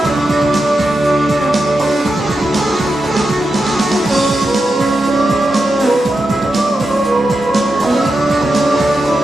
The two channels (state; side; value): normal; both; correlation 0.88